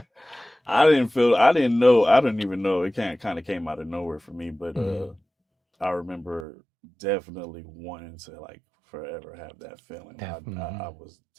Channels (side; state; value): left; drops out; at 6.5 s